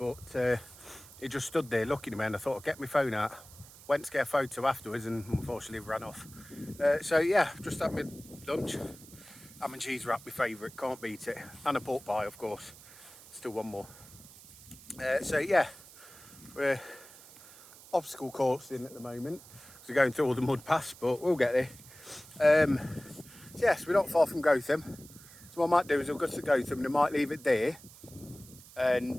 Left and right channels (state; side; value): noise; right; hiss, 20 dB below the sound